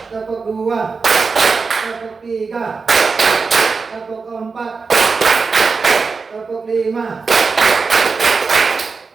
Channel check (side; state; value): left; quieter; 4.7 dB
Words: tepuk 2, tepuk 3, tepuk 4, tepuk 5,